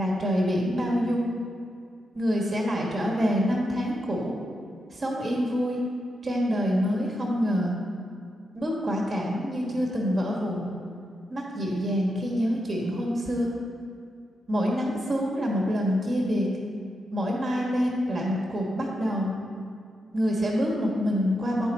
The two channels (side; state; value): both; normal; correlation 0.85